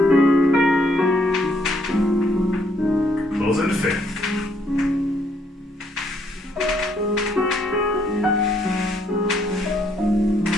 Close into fifth.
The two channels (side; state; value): both; normal; correlation 0.70